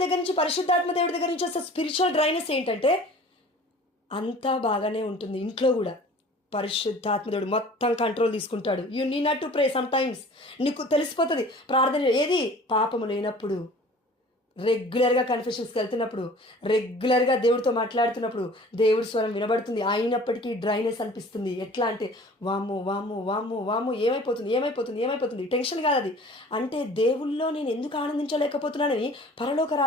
దగ్గర నుంచి, పరిశుద్ధాత్మ దేవుడి దగ్గర నుంచి వస్తే స్పిరిచువల్ డ్రైనెస్ ఏంటంటే అంతా బాగానే ఉంటుంది. ఇంట్లో కూడా పరిశుద్ధాత్మ దేవుడు మొత్తం కంట్రోల్ తీసుకుంటాడు. You need not to pray. Some times నీకు తెలిసిపోతుంది ప్రార్థన ఏది పాపము లేనప్పుడు, రెగ్యులర్గా కన్ఫెషన్స్కి వెళ్తున్నప్పుడు, రెగ్యులర్గా దేవుడితో మాట్లాడుతున్నప్పుడు దేవుడి స్వరం వినబడుతుంది. అయినప్పటికీ డ్రైనెస్ అనిపిస్తుంది. ఎట్లా అంటే వాము వాము వాము వాము ఏమైపోతుంది టెన్షన్ కాదు అది. అంటే దేవుళ్ళో నేను ఎందుకు ఆనందించలేకపోతున్నానని పరలోక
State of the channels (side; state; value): both; normal; correlation 0.46